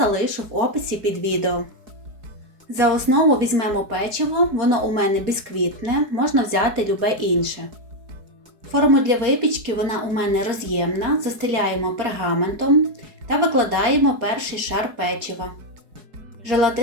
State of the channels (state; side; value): late; left; 4.7 ms